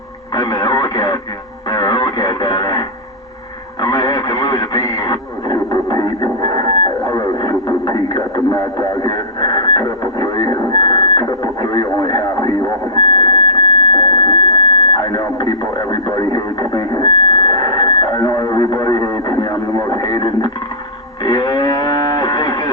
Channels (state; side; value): normal; both; correlation -0.16